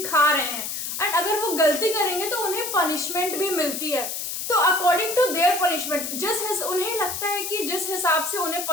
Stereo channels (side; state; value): left; noise; hiss, 4 dB below the sound